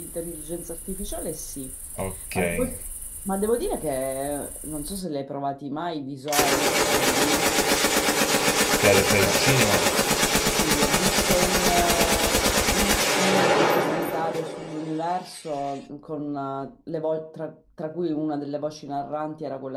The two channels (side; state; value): both; identical; correlation 1.00